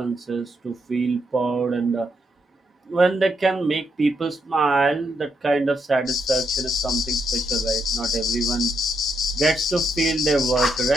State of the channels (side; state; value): both; normal; correlation 0.78